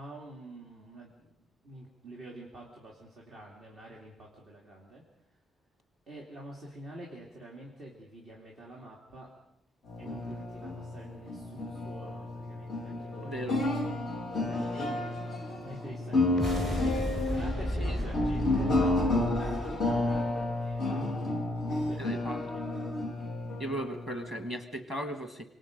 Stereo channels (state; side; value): normal; both; correlation 0.68